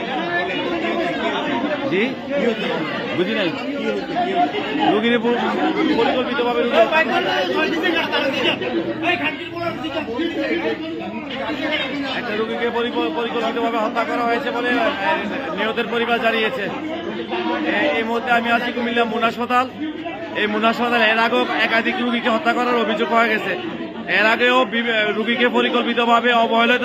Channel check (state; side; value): identical; both; correlation 1.00